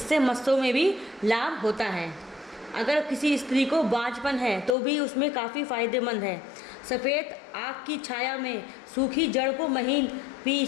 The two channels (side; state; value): right; drops out; at 4.8 s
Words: मस्सों में भी लाभ होता है। अगर किसी स्त्री को बांझपन है तो भी उसमें काफ़ी फ़ायदेमंद है। सफ़ेद आक की छाया में सूखी जड़ को महीन